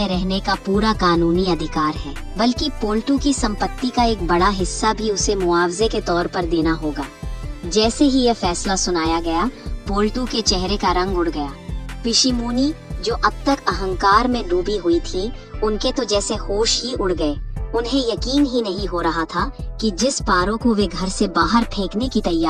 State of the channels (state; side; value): identical; both; correlation 1.00